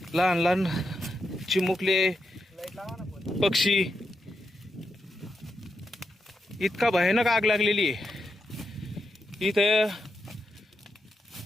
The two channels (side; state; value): both; normal; correlation 0.85